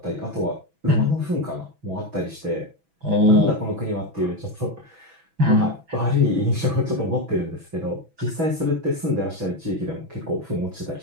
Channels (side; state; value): left; late; 6.1 ms